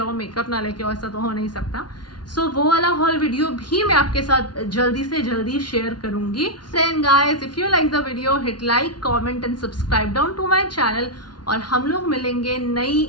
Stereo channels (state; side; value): late; right; 0.70 ms